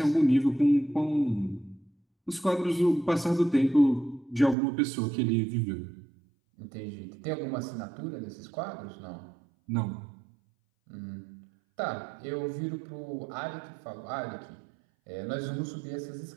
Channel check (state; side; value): drops out; left; at 4.5 s